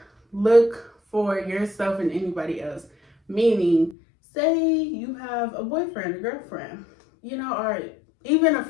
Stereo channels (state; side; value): drops out; right; at 4.0 s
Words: look for yourself in anybody else. Meaning, say you have a boyfriend, a girlfriend, you know, or even a